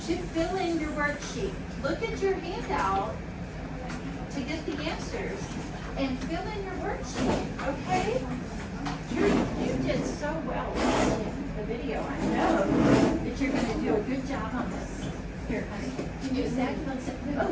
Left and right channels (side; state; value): both; identical; correlation 1.00